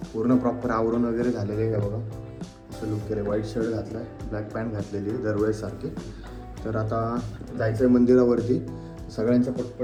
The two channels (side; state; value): both; identical; correlation 1.00